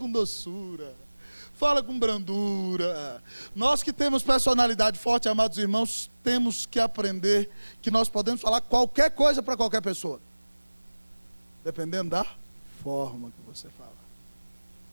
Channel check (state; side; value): inverted; both; correlation -1.00